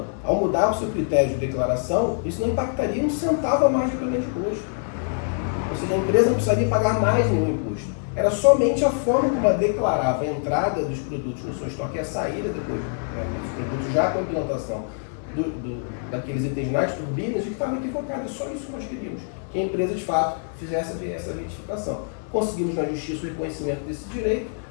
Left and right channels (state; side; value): silent; right; 62 dB below the other